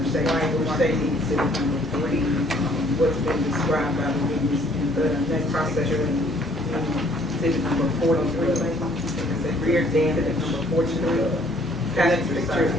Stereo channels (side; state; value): both; normal; correlation 0.61